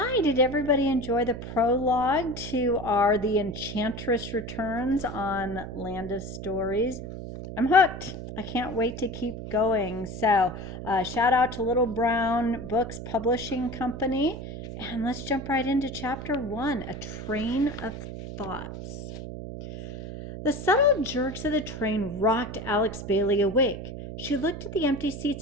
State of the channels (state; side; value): noise; right; hum, 9 dB below the sound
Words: did everybody enjoy the prologue to our The Enchantress Returns on Land of Stories? I'm hooked. I can't wait to keep going. Shout out to Little Brown Books Publishing Company. And let's jump right into chapter one, A Train of Thoughts. The subtle jerks of the train rocked Alex Bailey awake. She looked at the empty